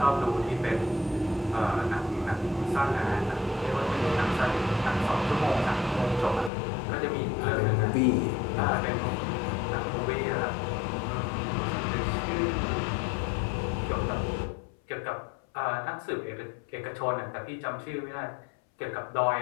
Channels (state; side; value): drops out; right; at 6.5 s